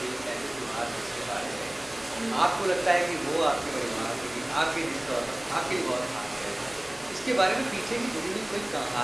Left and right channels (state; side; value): noise; right; hum, 29 dB below the sound